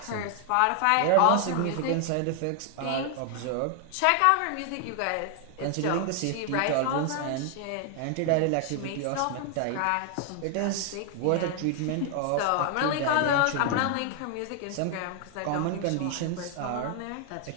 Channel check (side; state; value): both; different; correlation 0.00